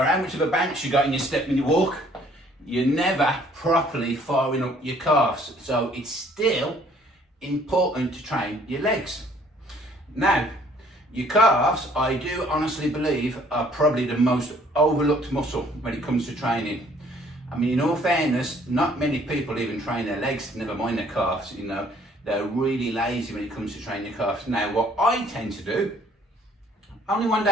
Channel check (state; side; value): normal; both; correlation 0.60